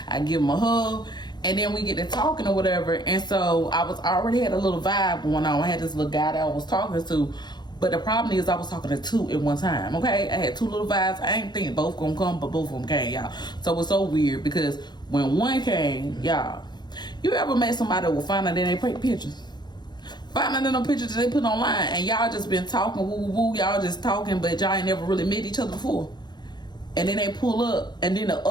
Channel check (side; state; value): right; late; 0.21 ms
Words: I give them a hug. And then we get to talking or whatever. And so I already had a little vibe going on. I had this little guy that I was talking to. But the problem is I was talking to two at one time, okay? I had two little vibes. I ain't thinking both gonna come, but both of them came, y'all. So it was so weird because when one came, y'all, you ever met somebody that will find out that they take pictures? Find out in them pictures that they put online and y'all just been talking, woo, woo, woo, y'all just talking, but y'all ain't never really met each other before. And then they pull up, and then the